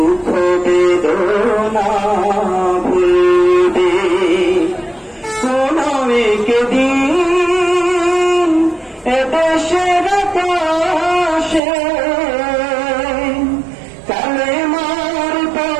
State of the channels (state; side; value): drops out; left; at 11.6 s